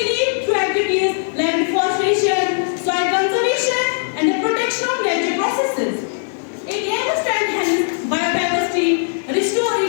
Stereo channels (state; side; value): silent; right; digital silence